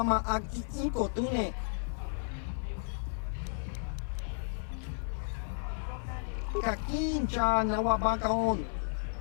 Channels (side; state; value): right; silent; 56 dB below the other